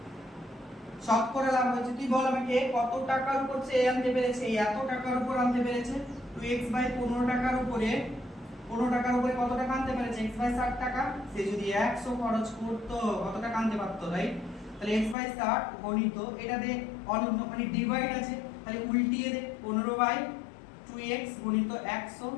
শতকরা লাভ হয়েছে, তুই বল আমাকে কত টাকার উপর সে আনতে পেরেছে, এত টাকার উপর আনতে পেরেছে, 2x/15 টাকার উপরে 15 টাকার উপরে কত টাকা আনতে পেরেছে? x/60 টাকা। সে যদি 100 খরচ করতো কত টাকা আনতে পারতো, রাইট? তাহলে x/60 গণিত এটা দে অনন্য মানে ডিভাইড আছে, তাহলে উল্টিয়ে দে 15/2x গণিত 100,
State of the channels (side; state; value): right; drops out; at 15.2 s